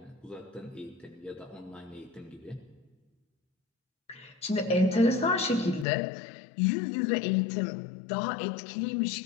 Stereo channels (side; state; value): right; drops out; at 5.9 s